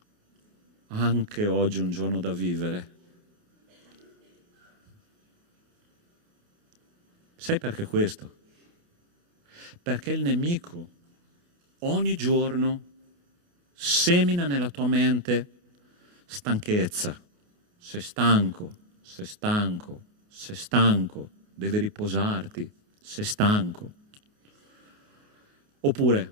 anche oggi è un giorno da vivere? Sai perché questo? Perché il nemico ogni giorno semina nella tua mente stanchezza. Sei stanco, sei stanco, sei stanco, devi riposarti, sei stanco.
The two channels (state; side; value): late; left; 29 ms